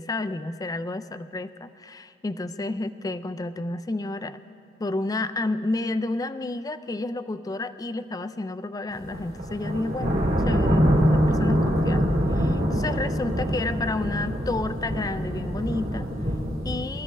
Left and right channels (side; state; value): both; normal; correlation 0.78